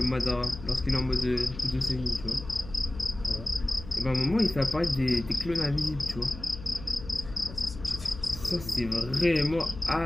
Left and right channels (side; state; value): left; noise; hum, 13 dB below the sound